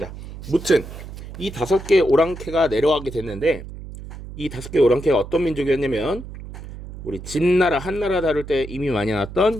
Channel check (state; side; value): noise; right; hum, 12 dB below the sound